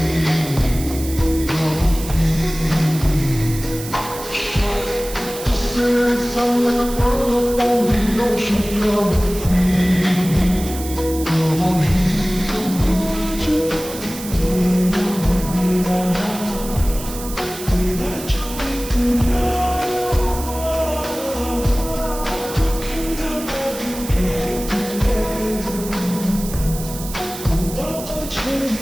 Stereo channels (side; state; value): right; noise; hiss, 11 dB below the sound